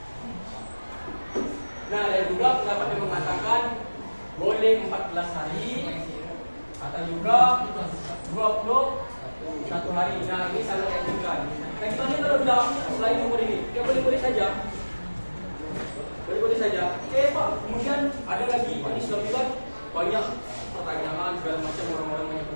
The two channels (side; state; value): both; inverted; correlation -1.00